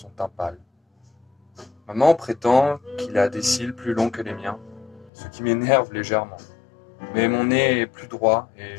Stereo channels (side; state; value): right; drops out; at 5.1 s